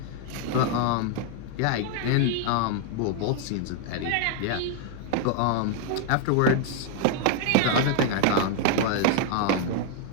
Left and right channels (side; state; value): both; different; correlation 0.00